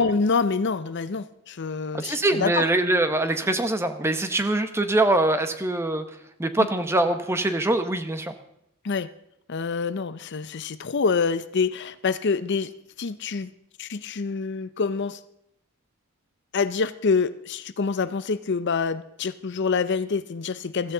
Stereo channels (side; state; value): both; normal; correlation 0.26